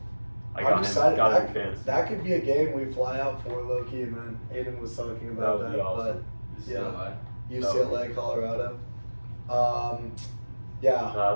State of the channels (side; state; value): both; inverted; correlation -1.00